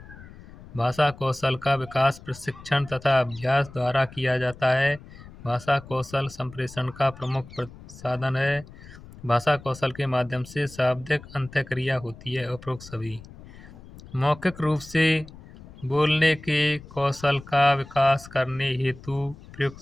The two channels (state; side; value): noise; left; rumble, 18 dB below the sound